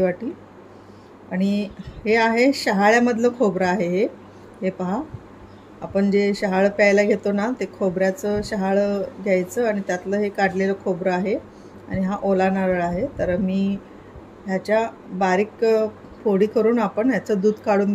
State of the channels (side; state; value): both; identical; correlation 1.00